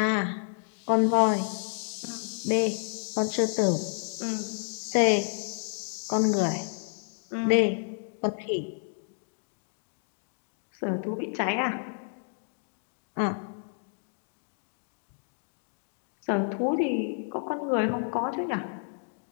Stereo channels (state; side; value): silent; right; digital silence